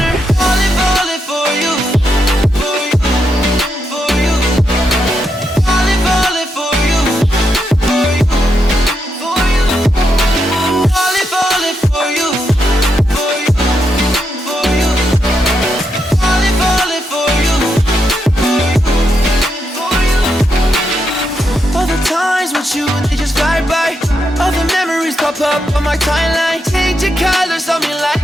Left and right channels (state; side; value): normal; both; correlation 0.82